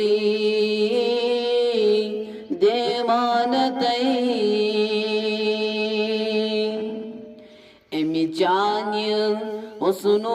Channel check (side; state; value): both; identical; correlation 1.00